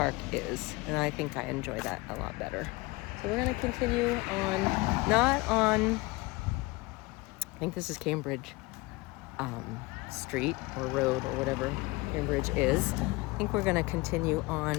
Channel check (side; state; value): right; quieter; 23.7 dB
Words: is, and I think I enjoy that a lot better. So we're going to continue on, I think this is Cambridge Street or Road or whatever Cambridge is. I think we're going to continue